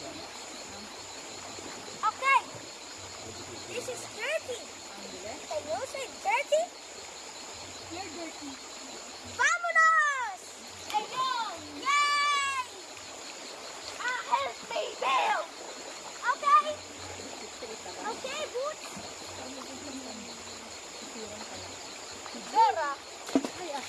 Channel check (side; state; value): both; identical; correlation 1.00